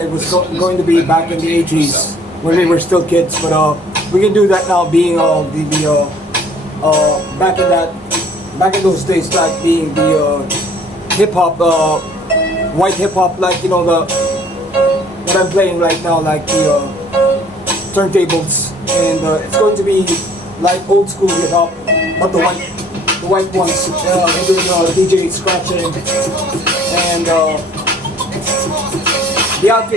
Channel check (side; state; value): both; normal; correlation 0.55